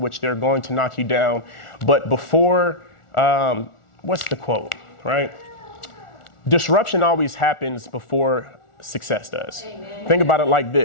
which they're going to knock you down. But before, what's the quote, right? Disruption always happens before success does. Amen. Think about it like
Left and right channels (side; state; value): right; late; 1.4 ms